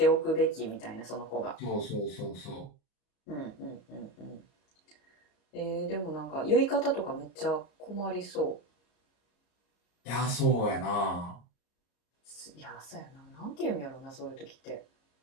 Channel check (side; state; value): right; late; 34 ms